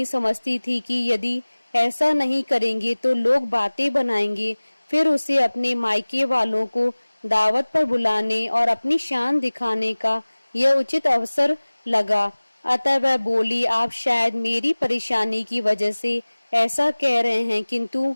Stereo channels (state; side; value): inverted; both; correlation -1.00